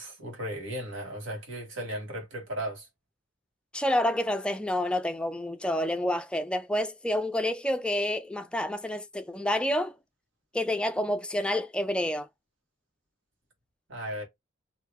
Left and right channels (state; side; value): normal; both; correlation 0.74